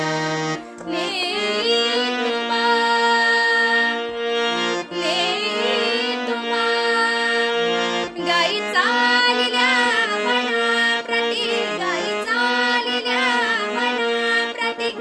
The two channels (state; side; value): identical; both; correlation 1.00